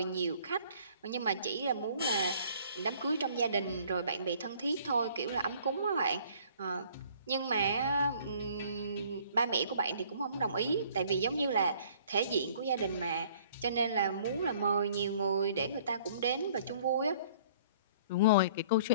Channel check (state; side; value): inverted; both; correlation -0.56